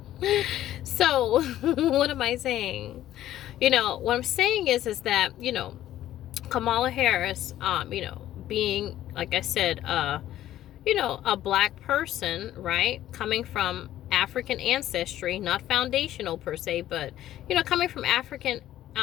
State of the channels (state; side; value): quieter; right; 13.1 dB